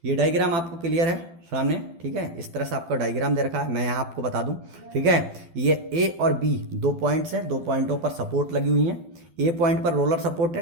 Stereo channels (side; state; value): left; late; 12 ms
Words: ये डायग्राम आपको क्लियर है सामने, ठीक है। इस तरह से आपका डायग्राम दे रखा है, मैं यहाँ आपको बता दूं, ठीक है। ये ए और बी दो पॉइंट्स हैं, दो पॉइंटों पर सपोर्ट लगी हुई हैं। ए पॉइंट पर रोलर सपोर्ट